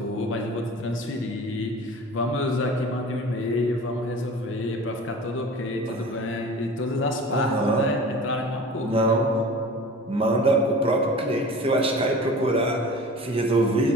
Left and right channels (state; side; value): normal; both; correlation 0.39